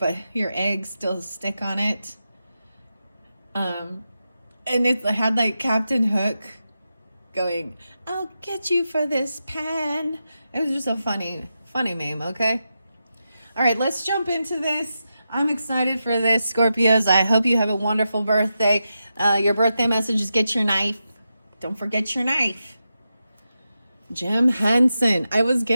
your eggs still stick on it. And it had like Captain Hook going, "I'll get you for this pan." It was just a funny meme, okay? All right, let's jump into this. I'm excited for this, Scorpios. I hope you have a wonderful birthday. Your birthday message is get your knife. Don't forget your knife. Jim Henson. I was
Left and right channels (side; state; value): both; inverted; correlation -0.89